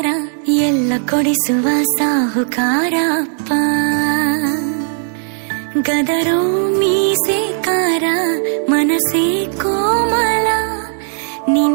ಎಲ್ಲ ಕೊಡಿಸುವ ಸಾಹುಕಾರ ಅಪ್ಪ. ಗದರೋ ಮೀಸೆಕಾರ, ಮನಸ್ಸೇ ಕೋಮಲ,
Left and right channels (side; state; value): left; silent; digital silence